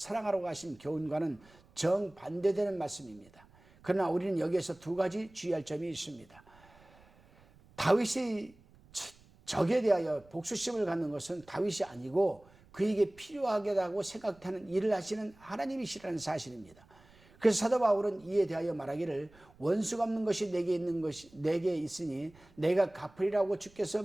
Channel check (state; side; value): noise; right; rumble, 27 dB below the sound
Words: 하신 교훈과는 정반대되는 말씀입니다. 그러나 우리는 여기에서 두 가지 주의할 점이 있습니다. 다윗이 적에 대하여 복수심을 갖는 것은 다윗이 아니고 그에게 필요하겠다고 생각하는 일을 하시는 하나님이시라는 사실입니다. 그래서 사도 바울은 이에 대하여 말하기를 원수 갚는 것이 내게 있으니 내가 갚으리라고 주께서